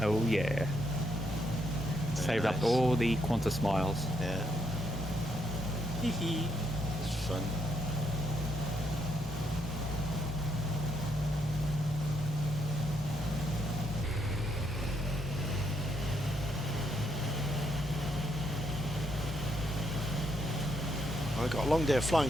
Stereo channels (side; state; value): both; normal; correlation 0.76